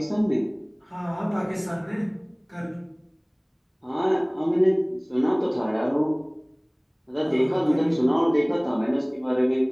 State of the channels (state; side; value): identical; both; correlation 1.00